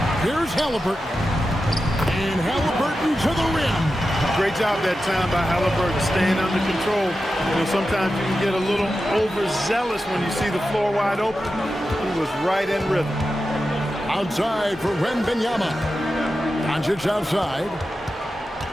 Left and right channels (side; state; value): both; normal; correlation 0.91